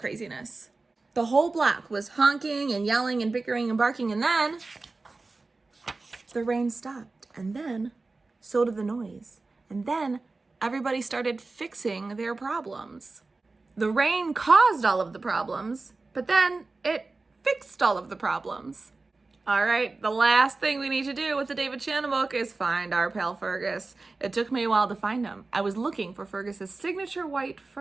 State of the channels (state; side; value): quieter; left; 3.6 dB